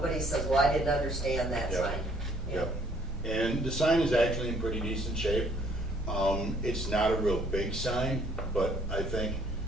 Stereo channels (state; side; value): normal; both; correlation 0.62